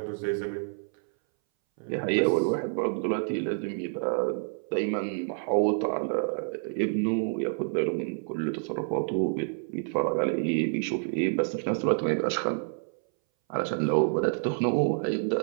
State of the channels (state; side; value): silent; left; 59 dB below the other